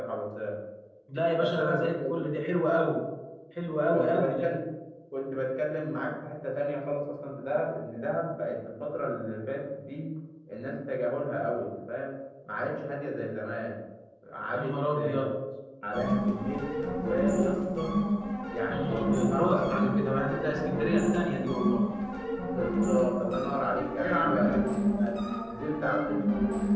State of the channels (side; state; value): both; identical; correlation 1.00